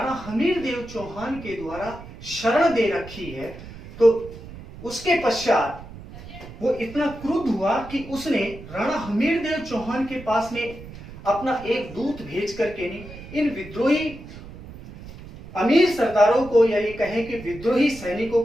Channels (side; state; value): right; noise; rumble, 15 dB below the sound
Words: हमीर देव चौहान के द्वारा शरण दे रखी है, तो उसके पश्चात वो इतना क्रुद्ध हुआ कि उसने राणा हमीर देव चौहान के पास में अपना एक दूत भेज करके इन विद्रोही अमीर सरदारों को, या ये कहें कि विद्रोही सैनिकों